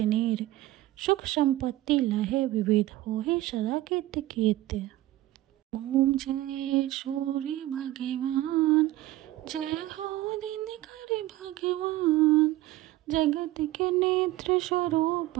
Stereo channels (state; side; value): quieter; left; 16.1 dB